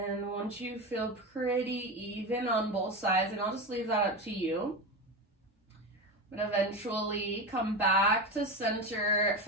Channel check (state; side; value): normal; both; correlation 0.21